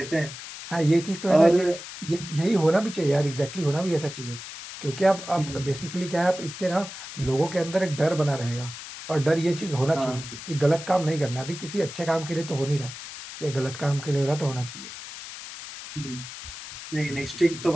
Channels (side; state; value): left; noise; hiss, 12 dB below the sound